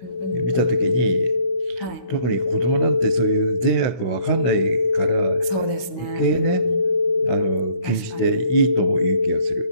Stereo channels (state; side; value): late; right; 16 ms